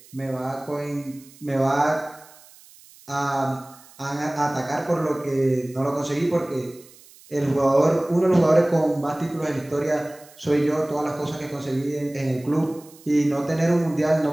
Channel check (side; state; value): right; noise; hiss, 24 dB below the sound